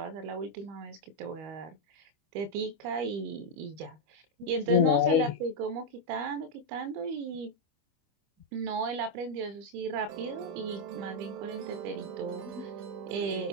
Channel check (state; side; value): late; left; 25 ms